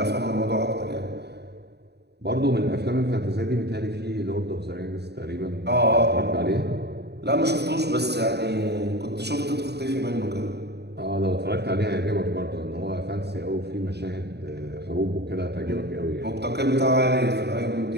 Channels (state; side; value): late; left; 0.48 ms